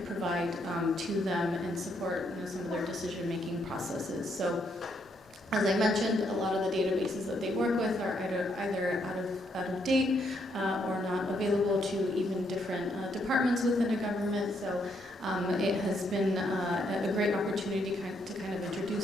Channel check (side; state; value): both; normal; correlation 0.74